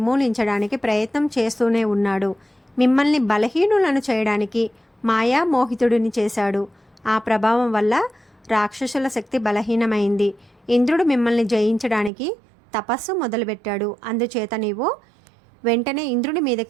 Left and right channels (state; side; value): drops out; left; at 12.1 s